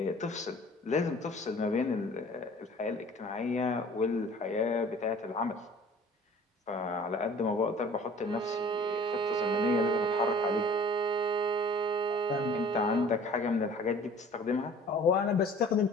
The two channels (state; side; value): normal; both; correlation 0.49